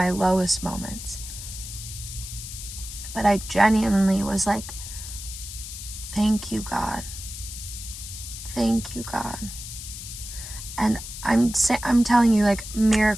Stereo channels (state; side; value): noise; left; hiss, 10 dB below the sound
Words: lowest moments. But I genuinely was like, thank you, God. Thank you, God. And I'm telling you, like,